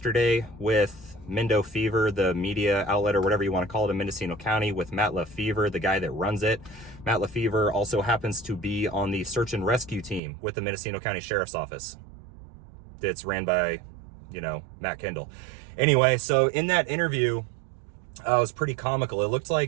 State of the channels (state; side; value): drops out; left; at 10.2 s